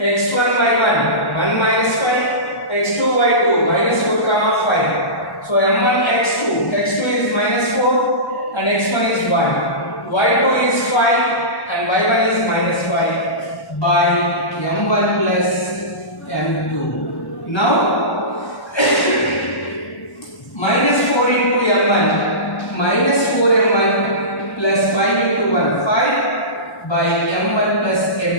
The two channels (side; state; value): right; late; 1.1 ms